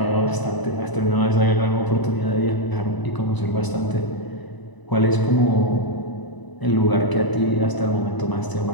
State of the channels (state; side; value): late; right; 1.0 ms